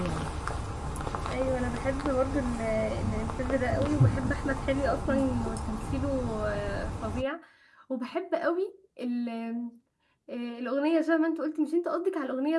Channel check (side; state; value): both; identical; correlation 1.00